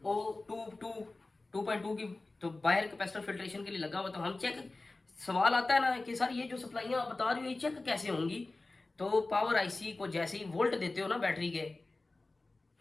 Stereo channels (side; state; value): right; quieter; 3.2 dB